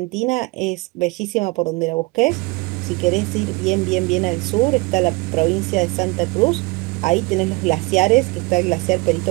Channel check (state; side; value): quieter; left; 25.2 dB